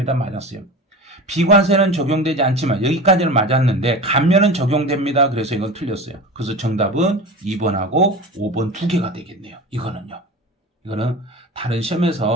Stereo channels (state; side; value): normal; both; correlation 0.31